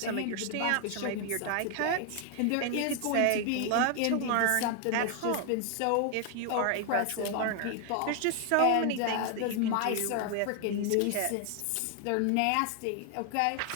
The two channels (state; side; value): different; both; correlation 0.00